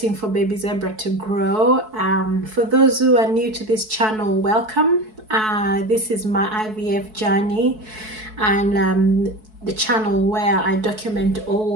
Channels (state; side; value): late; left; 4.6 ms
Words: for baby zebra to grow. For those who are new to this channel, welcome. This is my IVF journey, and the channel where I document